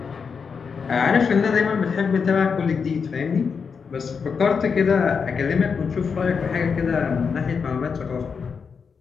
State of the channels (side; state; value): right; quieter; 5.8 dB